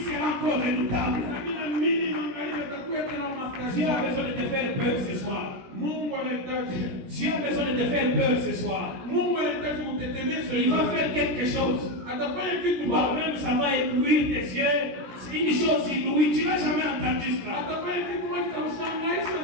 encore redoutable. Dieu a besoin de te faire peur ce soir. Dieu a besoin de te faire peur ce soir. Il va faire quelque chose. Toi-même, ça va éblouir tes yeux. C'est une chose inouïe. Tu n'as jamais entendu cela.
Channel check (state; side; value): late; left; 17 ms